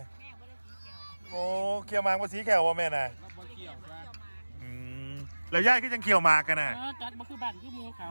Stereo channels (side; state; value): both; inverted; correlation -1.00